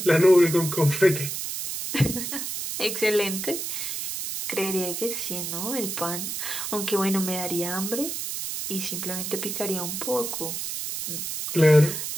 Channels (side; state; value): right; noise; hiss, 4 dB below the sound